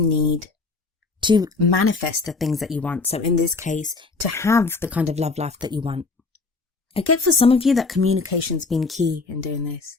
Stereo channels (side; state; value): right; quieter; 4.0 dB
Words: to manifest the things that you want. So in this case, to have the kind of love life that you want. I get for some of you that communication's been key in doing this.